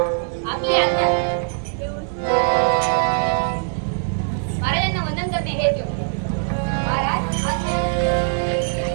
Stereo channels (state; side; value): silent; left; digital silence